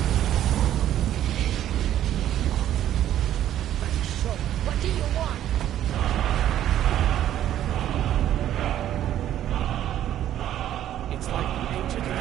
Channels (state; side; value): quieter; left; 11.7 dB